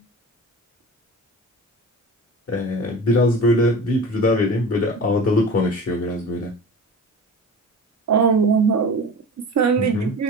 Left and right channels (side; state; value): both; normal; correlation 0.34